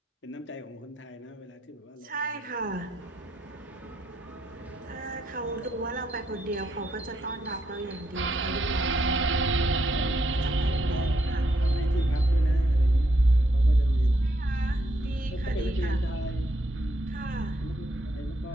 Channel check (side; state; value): both; normal; correlation 0.76